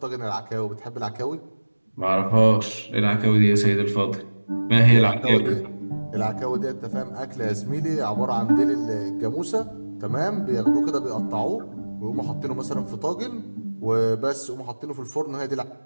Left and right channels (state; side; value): inverted; both; correlation -1.00